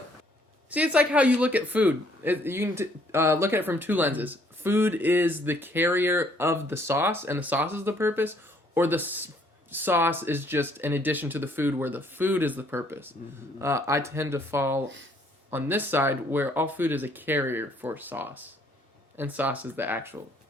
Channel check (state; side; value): normal; both; correlation 0.64